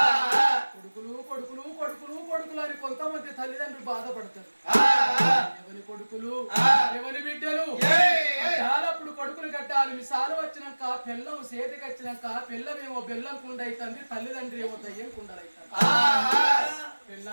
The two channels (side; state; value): both; inverted; correlation -1.00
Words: కొడుకులు కొడుకులు కొడుకులు కొడుకులు అని కొంతమంది తల్లిదండ్రులు బాధపడతారు ఎవరి కొడుకులు ఎవరి బిడ్డలు అప్పుడు కొడుకులు కట్టాలి మిసాలు వచ్చినాక పిల్లం సేతికి వచ్చినాక పిల్లమేమో బెల్లం కుండ అవుతుంది తల్లిదండ్రి ఏమో దయ్యం కుండలవుతారు